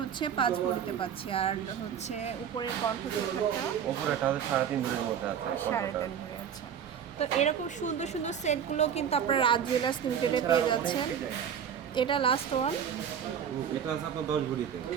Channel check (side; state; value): left; quieter; 8.4 dB